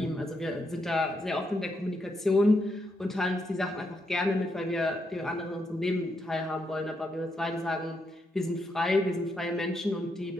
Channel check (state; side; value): normal; both; correlation 0.80